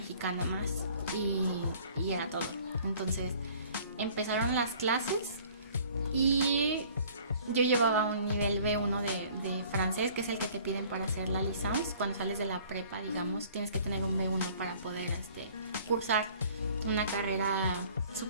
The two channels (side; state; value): both; inverted; correlation -0.53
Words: más, y era todo. Entonces empezaron las clases y yo llevaba un nivel B1 de francés, que es el que te piden para hacer la licence. Cuando sales de la prepa, digamos, tienes que tener un B1 para poder cursar una carrera